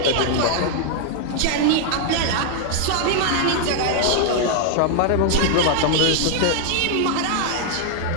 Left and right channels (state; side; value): different; both; correlation 0.00